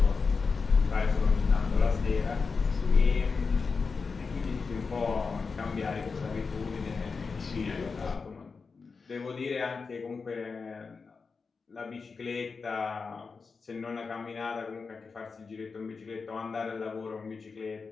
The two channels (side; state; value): right; quieter; 4.8 dB